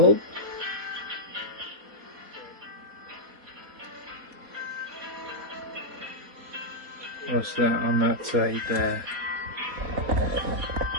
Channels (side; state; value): left; late; 4.2 ms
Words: What's that on that side there?